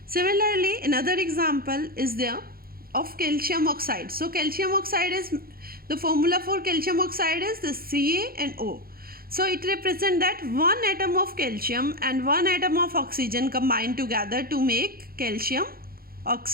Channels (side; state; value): left; late; 0.43 ms